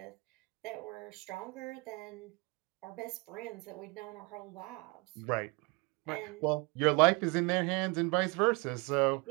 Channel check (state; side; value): quieter; left; 27.7 dB